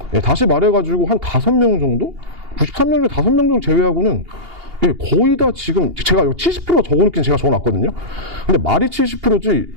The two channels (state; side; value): late; left; 2.8 ms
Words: 네, 다시 말해가지고 한 5명 정도? 93명 중에 5명 정도 제외하고는 거의 다 지금 제가 70%가 적어놓긴 제가 적어놨거든요. 근데 말이 70%지